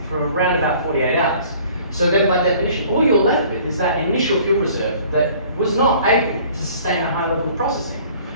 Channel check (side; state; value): both; inverted; correlation -0.53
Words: for around about 48 hours. So then by definition, all you're left with is that initial fuel reserve that was not able to sustain a high level of processing.